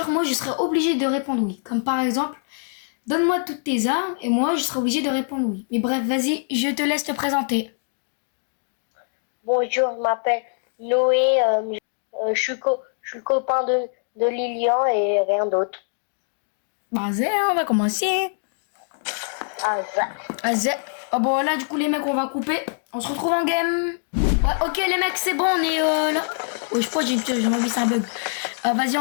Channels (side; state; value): right; silent; digital silence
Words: moi, je serai obligée de répondre oui. Comme par exemple, donne-moi toutes tes armes et moi, je serai obligée de répondre oui. Mais bref, vas-y, je te laisse te présenter. Bonjour, je m'appelle Noé, je suis le copain de Lilian et rien d'autre. Vas-y, on va commencer. Ah, ça. Vas-y. Ah bon, là, du coup, les mecs, on va couper. On se retrouve en game. Ouais, ok, les mecs, c'est bon, on est là. Oh, je crois que j'ai envie, c'est un bug. Vas-y,